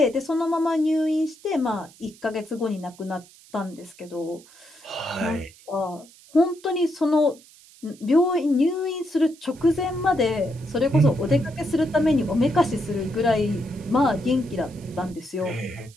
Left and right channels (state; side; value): noise; right; hiss, 24 dB below the sound